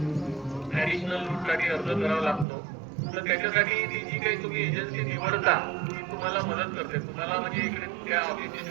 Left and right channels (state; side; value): drops out; left; at 2.5 s